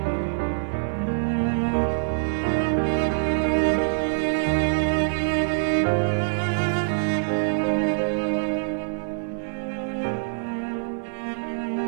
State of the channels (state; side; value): silent; left; 56 dB below the other